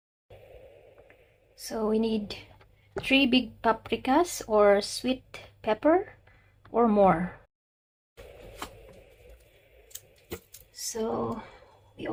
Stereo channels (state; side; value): identical; both; correlation 1.00